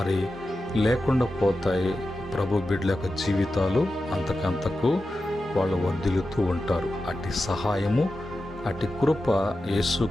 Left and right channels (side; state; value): both; normal; correlation 0.92